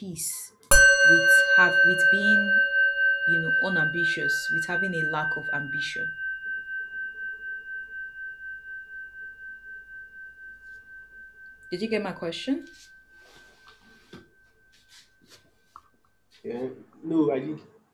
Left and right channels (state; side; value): identical; both; correlation 1.00